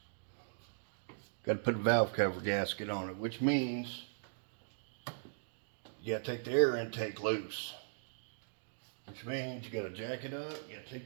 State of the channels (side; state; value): left; silent; digital silence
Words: got to put a valve cover gasket on it, which means you got to take the air intake loose. Which means you got to jack it up, you got to